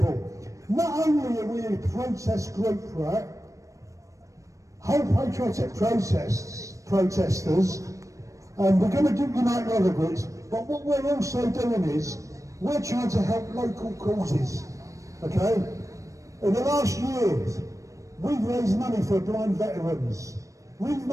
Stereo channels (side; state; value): left; late; 0.16 ms